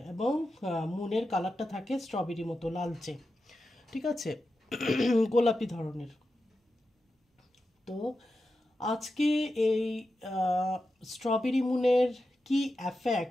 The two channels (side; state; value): both; normal; correlation 0.90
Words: এবং মুনের কালারটা থাকে স্ট্রবেরি মতো লালচে। ঠিক আছে, গোলাপি ধরনের। তো আজকে এই স্ট্রবেরি মুনের কি